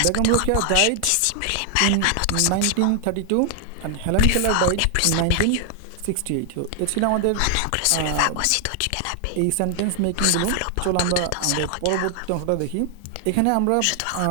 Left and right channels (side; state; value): both; different; correlation 0.00